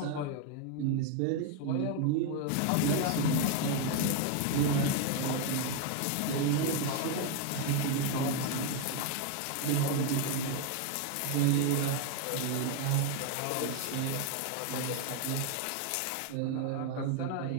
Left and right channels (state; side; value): different; both; correlation 0.01